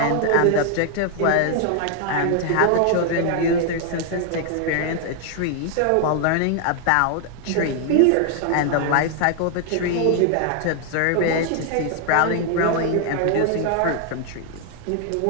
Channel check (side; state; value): both; different; correlation 0.00